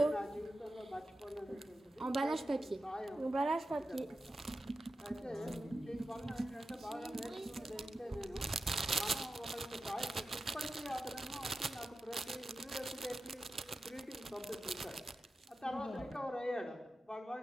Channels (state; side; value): normal; both; correlation 0.92